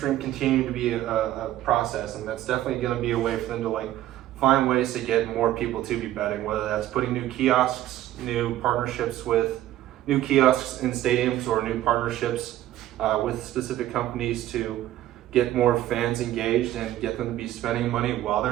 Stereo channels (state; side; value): quieter; left; 13.8 dB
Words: continuing to be a process, and that's definitely going to be a way for them to like find ways to get more people to be betting. Whether that's putting new kiosks, new partnerships with new kiosks in stadiums, or new partnerships with specific companies to get more fans engaged and get them to be spending money while